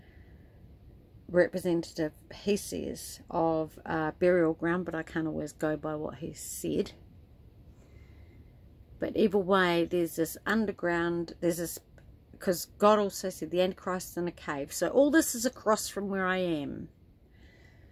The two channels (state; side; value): identical; both; correlation 1.00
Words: representative, he says, of burial ground, but I can't always go by what he said. But either way, there's this underground, there's this, because God also said the Antichrist is in a cave. So all this is across from where I am.